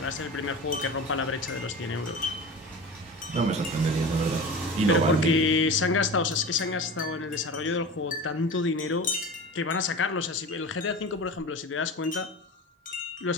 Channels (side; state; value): both; normal; correlation 0.32